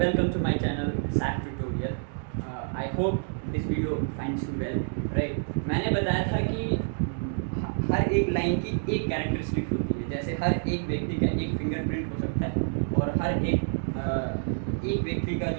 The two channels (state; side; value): silent; left; digital silence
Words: to my channel Saf Tutorial. I hope this video finds you well. Right? मैंने बताया था कि हर एक लाइन की एक कैरेक्टरिस्टिक होती है. जैसे हर एक व्यक्ति का एक फिंगरप्रिंट हो सकता है और हर एक व्यक्ति का